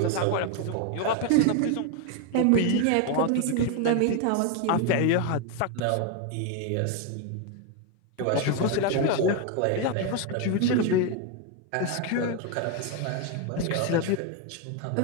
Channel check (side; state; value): both; different; correlation 0.01